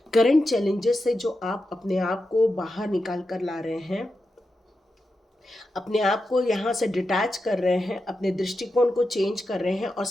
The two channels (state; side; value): normal; both; correlation 0.89